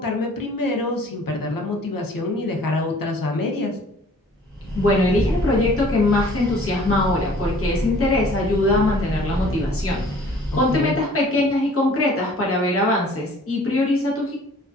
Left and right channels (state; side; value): normal; both; correlation 0.52